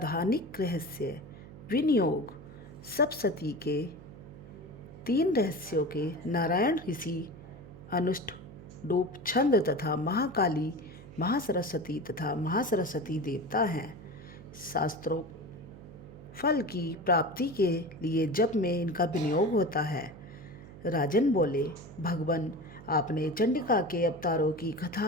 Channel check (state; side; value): noise; right; hum, 17 dB below the sound